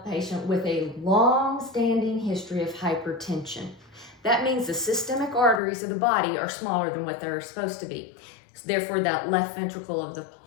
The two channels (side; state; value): right; drops out; at 5.6 s